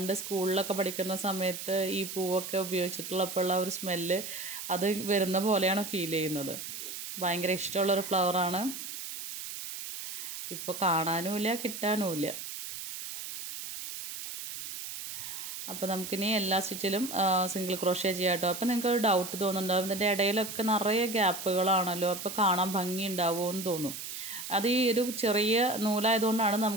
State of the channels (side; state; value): right; noise; hiss, 8 dB below the sound